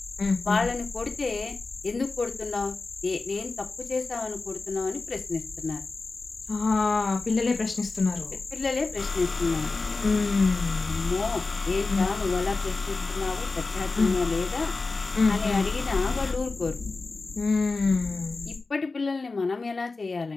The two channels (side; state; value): right; quieter; 3.8 dB